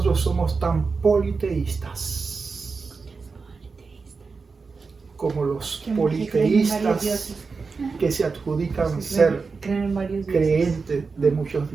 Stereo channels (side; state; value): left; quieter; 4.6 dB